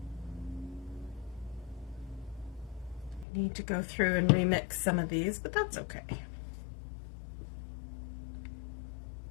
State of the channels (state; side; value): drops out; right; at 3.2 s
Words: need to go through and remix some of these, but that's okay.